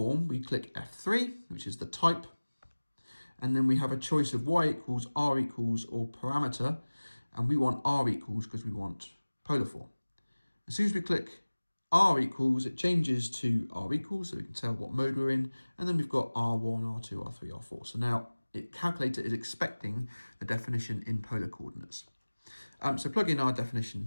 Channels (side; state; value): both; inverted; correlation -1.00